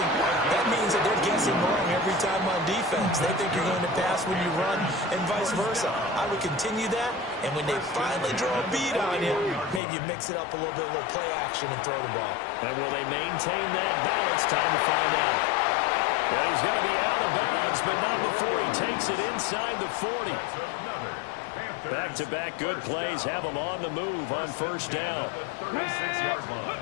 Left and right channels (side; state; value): right; drops out; at 9.8 s